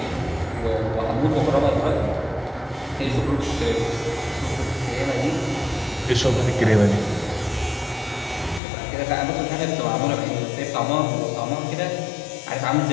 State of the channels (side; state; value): right; drops out; at 8.6 s